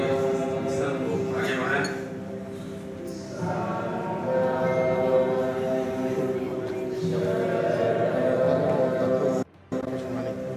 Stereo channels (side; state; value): both; identical; correlation 1.00